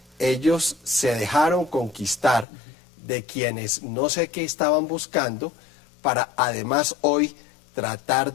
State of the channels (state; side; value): drops out; right; at 2.5 s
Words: ellos se dejaron conquistar de quienes no sé qué estaban buscando, para además hoy tratar